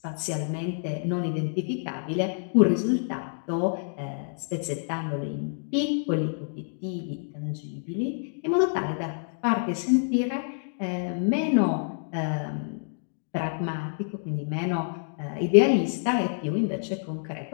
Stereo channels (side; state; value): right; silent; digital silence